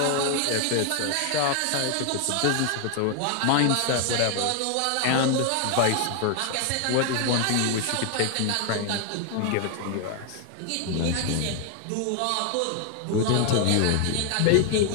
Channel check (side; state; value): both; different; correlation 0.00